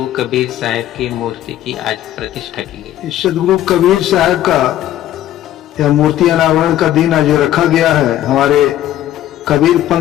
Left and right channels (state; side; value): quieter; right; 12.8 dB